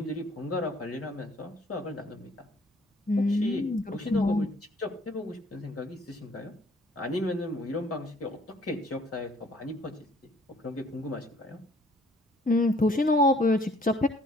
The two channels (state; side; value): normal; both; correlation 0.60